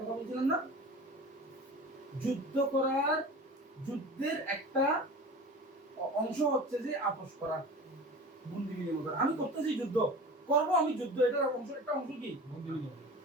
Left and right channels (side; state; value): both; normal; correlation 0.36